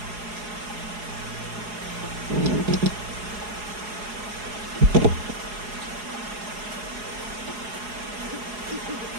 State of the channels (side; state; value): left; late; 4.8 ms